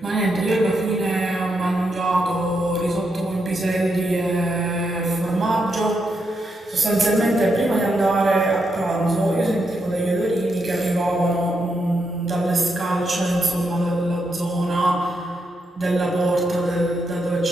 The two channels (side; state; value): both; normal; correlation 0.82